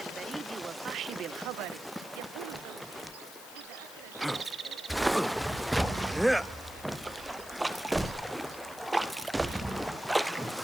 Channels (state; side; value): noise; left; hiss, 17 dB below the sound